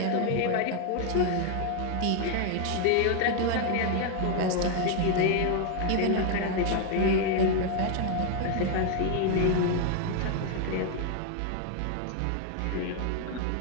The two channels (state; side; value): different; both; correlation 0.00